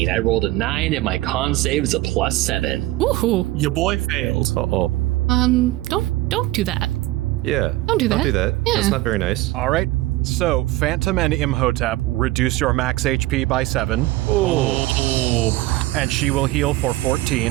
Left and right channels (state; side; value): quieter; left; 17.8 dB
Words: I rolled a 9 and my con save is a +7. Woohoo. Your boy failed. Uh-oh. Don't do that. Yeah. Don't do that. Don't do that. Yeah. That's not very nice. All right, so Phantom and Imhotep reduce your max HP by 7, Oh. and she will heal for